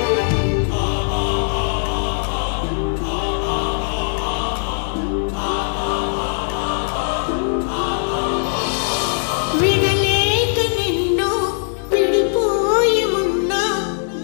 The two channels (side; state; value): right; silent; digital silence